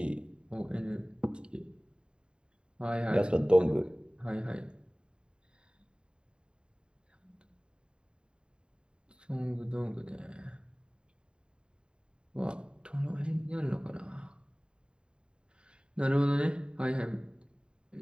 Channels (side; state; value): left; late; 0.050 ms